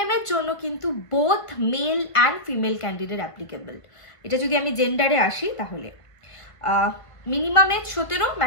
এর জন্য কিন্তু both male and female candidate applicable. এটা যদি আমি জেন্ডারে আসি, তাহলে মিনিমাম এজ 17,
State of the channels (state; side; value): late; right; 1.5 ms